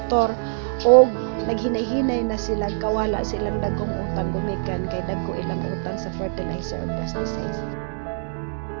o naghinay-hinay na sila kawala silang dagkong utang gumikan kay dagko ilang utang sa fertilizer o pesticides.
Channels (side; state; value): left; silent; 63 dB below the other